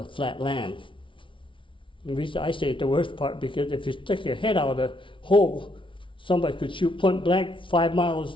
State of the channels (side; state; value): right; late; 0.25 ms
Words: flat land. And I say the worst part because if you stick your head out of the hole, somebody could shoot point blank 5